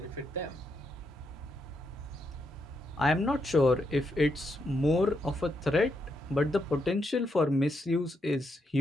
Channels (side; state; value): both; normal; correlation 0.80